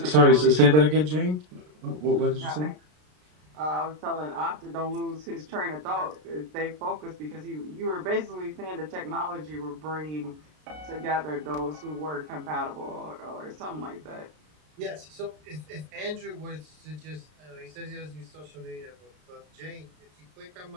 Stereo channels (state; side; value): late; left; 33 ms